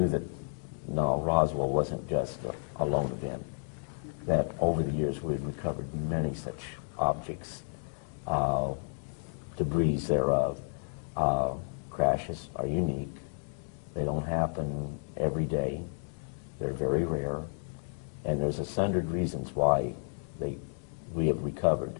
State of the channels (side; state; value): right; silent; digital silence